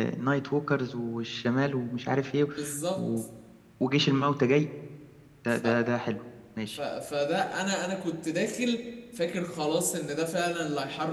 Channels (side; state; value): both; identical; correlation 1.00